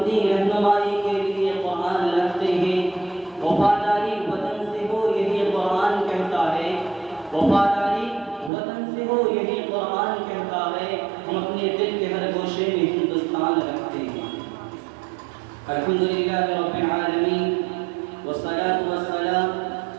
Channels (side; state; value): left; drops out; at 8.5 s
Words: رہنمائی کے لیے قرآن رکھتے ہیں۔ وفاداری وطن سے ہو یہی قرآن کہتا ہے، وفاداری وطن سے ہو یہی قرآن کہتا ہے، ہم اپنے دل کے ہر گوشے میں ہندوستان رکھتے ہیں۔ الحمدللہ رب العالمین والصلاة والسلام